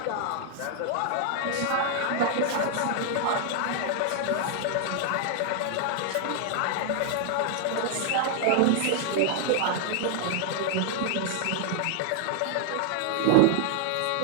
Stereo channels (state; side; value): different; both; correlation 0.00